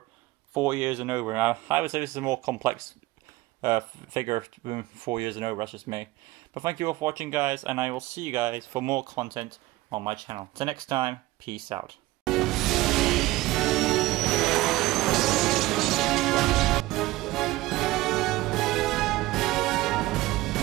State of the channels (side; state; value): left; quieter; 18.8 dB